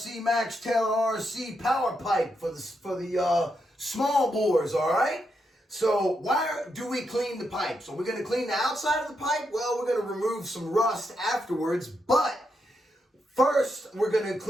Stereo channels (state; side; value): normal; both; correlation 0.82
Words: Taylor RC power pipe for the small bores, all right? So why do we clean the pipe? So we're going to clean the outside of the pipe. Well, we're going to remove some rust afterwards, but first we're going to